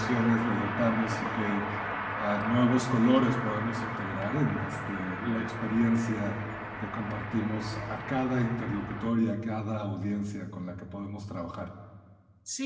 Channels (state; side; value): identical; both; correlation 1.00